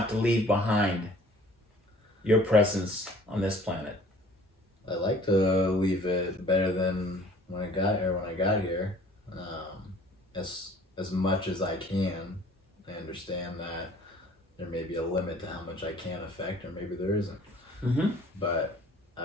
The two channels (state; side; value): normal; both; correlation 0.52